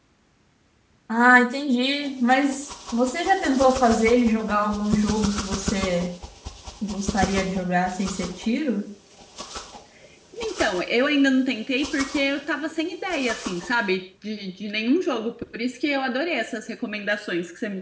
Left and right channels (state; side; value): identical; both; correlation 1.00